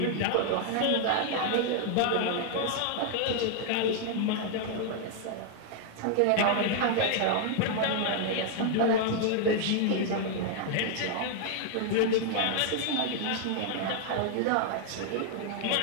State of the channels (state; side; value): different; both; correlation 0.00